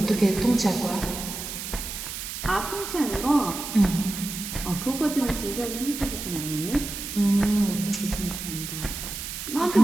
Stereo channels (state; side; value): noise; right; hiss, 7 dB below the sound